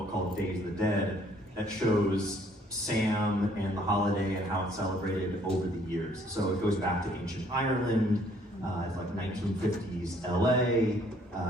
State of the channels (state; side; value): normal; both; correlation 0.62